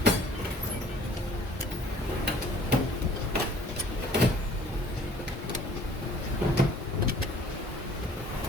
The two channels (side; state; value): both; normal; correlation 0.54